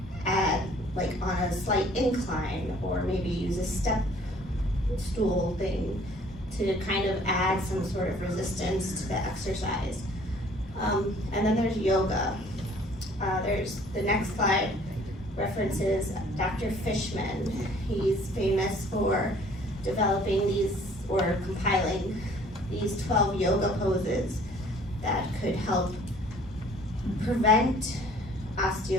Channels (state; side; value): normal; both; correlation 0.55